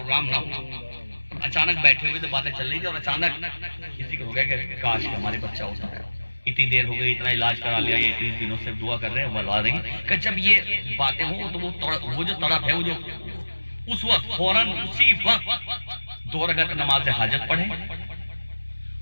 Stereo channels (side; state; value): both; inverted; correlation -1.00